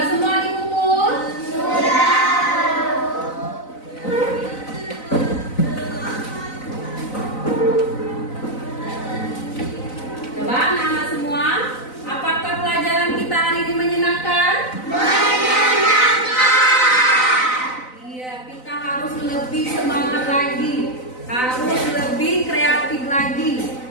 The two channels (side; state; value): right; late; 4.0 ms